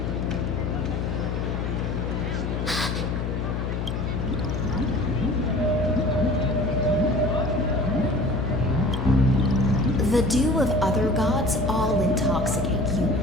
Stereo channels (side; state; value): left; noise; hum, 2 dB below the sound